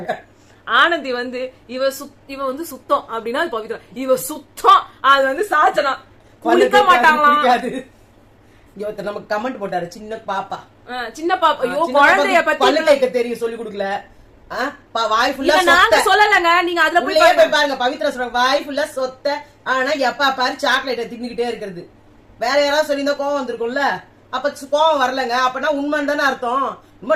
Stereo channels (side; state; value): both; identical; correlation 1.00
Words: ஆனந்தி வந்து இவ வந்து சுத்தம் அப்படின்னா பவித்ரா, இவ சுத்தம் அது வந்து சாச்சனா குளிக்க மாட்டாங்களாம். நமக்கு கமெண்ட் போட்டாரு சின்ன பாப்பா. ஐயோ குழந்தைய பத்தி பல்லு தேய்க்க தெரியும் சொல்லி கொடுக்கல. வாய் ஃபுல்லா நாங்க சொல்லலங்க, நீங்க அதுல போய் பாருங்க. பவித்ரா சொல்றாங்க வாய் ஃபுல்லா சொத்த, ஆனா எப்ப பாரு சாக்லேட்டை தின்னுகிட்டே இருக்கிறது. வேற யாராவது சொல்லியிருந்தா கோவம் வந்திருக்கும்ல, அப்ப கோவம் வரலங்க. அப்பனா உண்மைன்னு தானே அர்த்தம்.